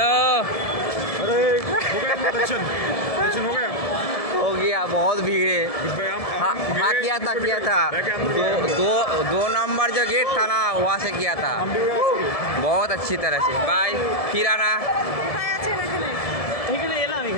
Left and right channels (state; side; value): late; right; 1.7 ms